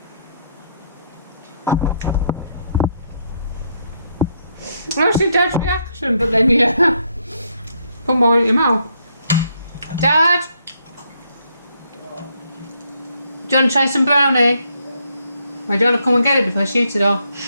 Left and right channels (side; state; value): both; inverted; correlation -0.74